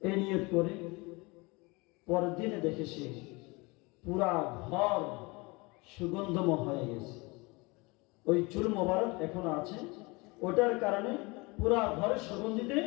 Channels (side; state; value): right; quieter; 26.0 dB